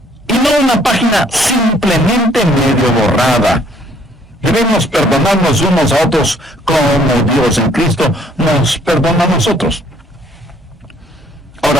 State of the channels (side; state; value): both; normal; correlation 0.62